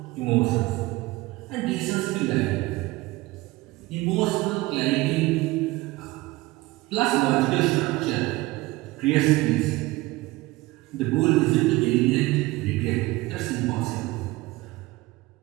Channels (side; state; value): left; quieter; 20.3 dB